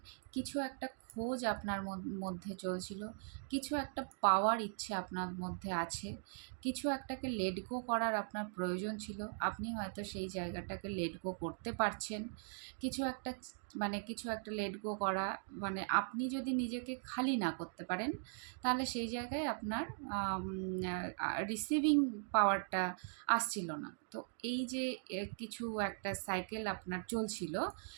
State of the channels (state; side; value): silent; left; digital silence